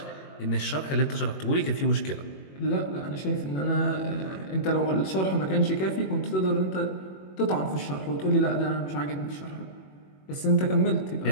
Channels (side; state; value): right; late; 21 ms